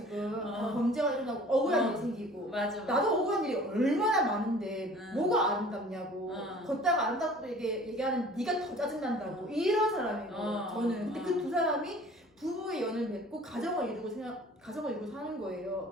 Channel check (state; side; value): normal; both; correlation 0.48